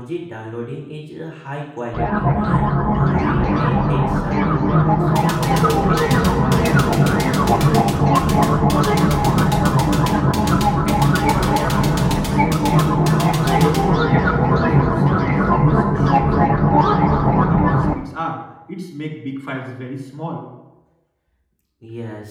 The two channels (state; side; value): identical; both; correlation 1.00